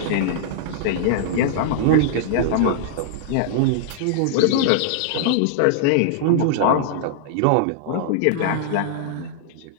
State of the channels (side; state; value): both; different; correlation -0.01